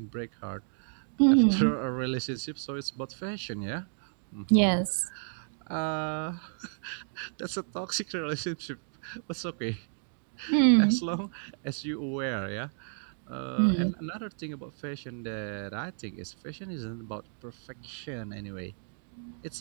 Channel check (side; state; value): left; silent; 57 dB below the other